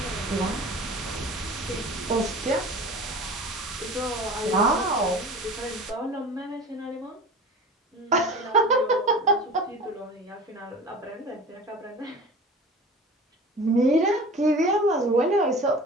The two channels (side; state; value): both; normal; correlation 0.38